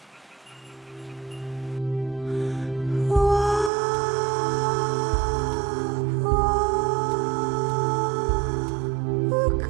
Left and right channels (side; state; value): left; drops out; at 3.7 s